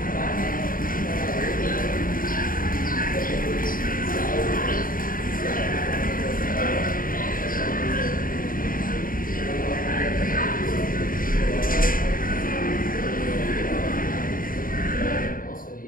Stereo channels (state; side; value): late; right; 0.41 ms